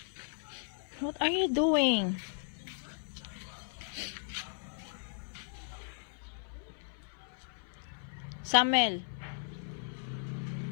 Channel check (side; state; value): right; silent; 54 dB below the other